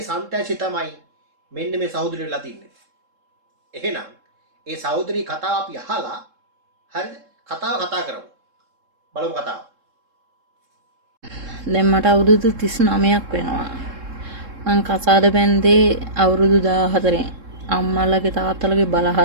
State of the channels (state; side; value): late; left; 3.7 ms